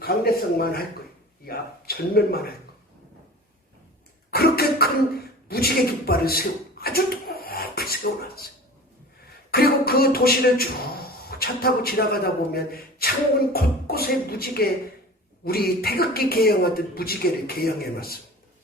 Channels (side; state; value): both; normal; correlation 0.39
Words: 강대성만 할 거예요. 이 앞 전면만 할 거예요. 그렇게 큰 무지개 깃발을 아주 높이 세워놨어요. 그리고 그 도시를 쭉 차 타고 지나가다 보면 창문 곳곳에 무지개, 우리 태극기 개영하듯 무지개를 개영해놨습니다.